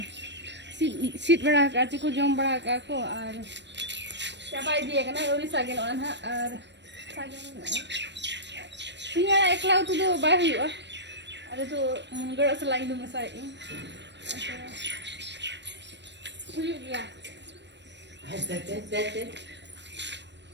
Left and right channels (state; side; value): late; left; 0.51 ms